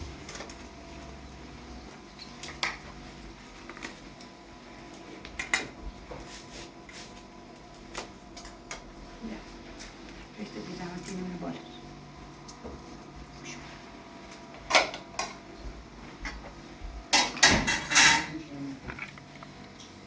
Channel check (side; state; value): both; identical; correlation 1.00